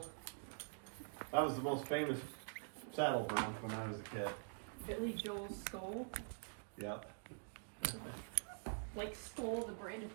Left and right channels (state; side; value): silent; left; digital silence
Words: That was the most famous saddle bronc when I was a kid. Billy Joel Skull. Yep. Like Skull, the brand of